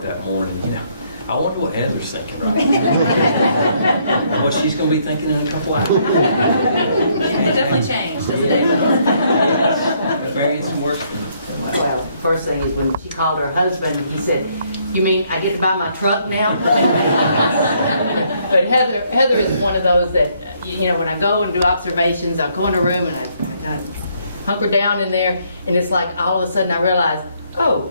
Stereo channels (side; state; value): both; inverted; correlation -0.69